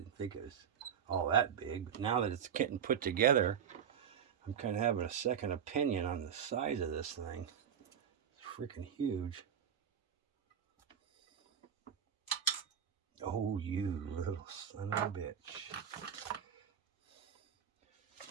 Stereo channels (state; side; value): quieter; left; 8.3 dB